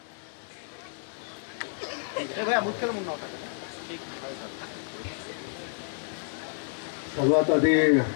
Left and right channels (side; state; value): right; silent; digital silence